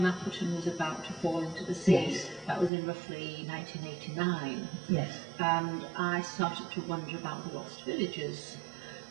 Mapperton was about to fall into the sea? Yes. That was in roughly 1989. Yes. And I started to wonder about the lost villages,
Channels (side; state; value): left; drops out; at 2.7 s